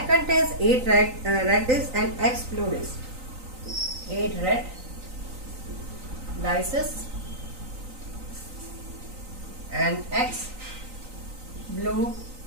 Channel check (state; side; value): late; left; 3.9 ms